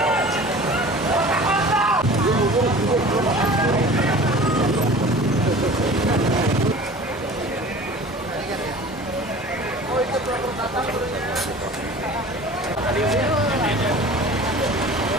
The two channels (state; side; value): normal; both; correlation 0.41